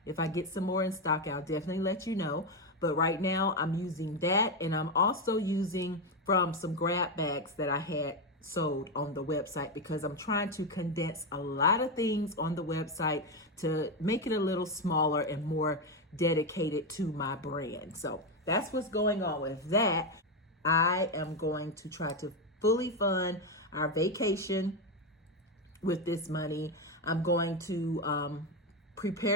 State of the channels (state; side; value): normal; both; correlation 0.09